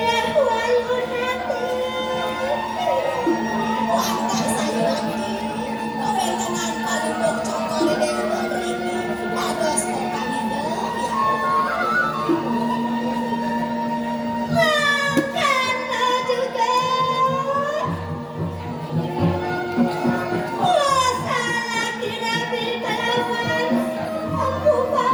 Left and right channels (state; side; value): identical; both; correlation 1.00